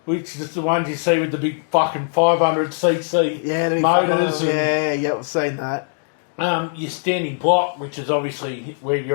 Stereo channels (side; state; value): right; silent; 65 dB below the other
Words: which is the ones you see with the big fucking 500cc Yeah, motors. I've seen that. Your standing block, which is obviously where